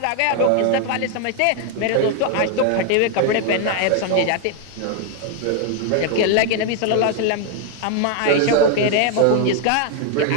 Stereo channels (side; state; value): both; different; correlation 0.00